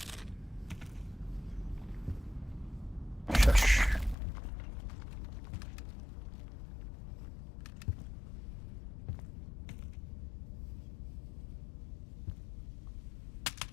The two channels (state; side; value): drops out; right; at 4.2 s